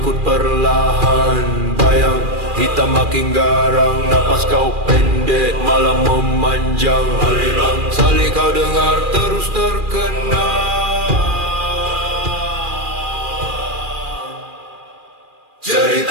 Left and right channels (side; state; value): left; late; 2.4 ms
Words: perlahan. Bayang hitam makin garang, napas kau pendek malam memanjang. Aliran salih kau dengar terus terkenang.